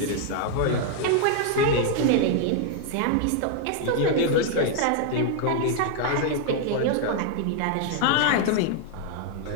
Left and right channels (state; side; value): different; both; correlation 0.00